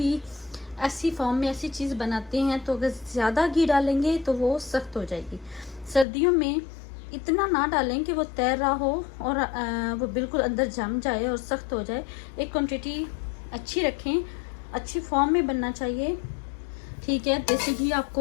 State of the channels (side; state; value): right; drops out; at 6.1 s